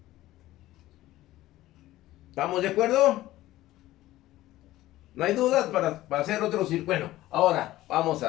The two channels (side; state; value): right; quieter; 15.9 dB